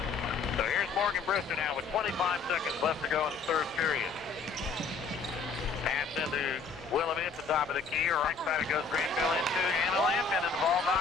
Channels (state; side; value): quieter; right; 5.0 dB